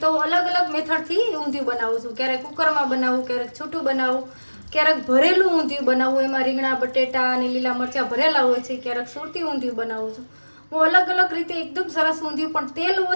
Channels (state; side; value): inverted; both; correlation -1.00